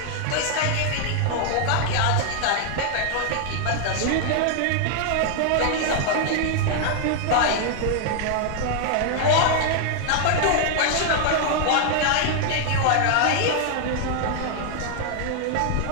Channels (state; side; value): different; both; correlation 0.00